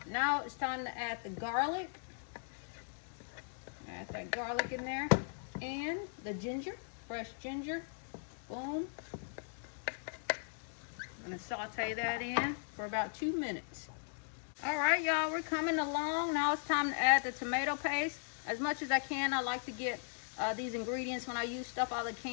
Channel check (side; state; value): right; silent; digital silence